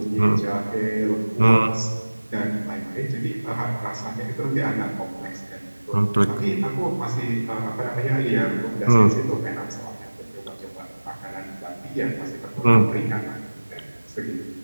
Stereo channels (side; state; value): both; inverted; correlation -1.00